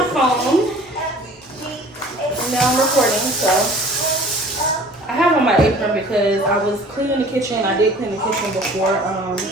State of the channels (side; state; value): both; normal; correlation 0.48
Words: phone. And now I'm recording, so I have on my apron because I was cleaning the kitchen. I did clean the kitchen before.